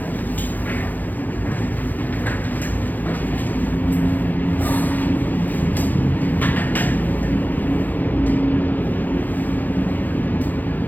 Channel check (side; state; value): right; late; 0.084 ms